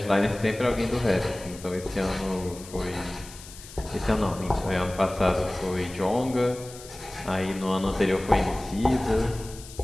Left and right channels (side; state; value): left; noise; hiss, 17 dB below the sound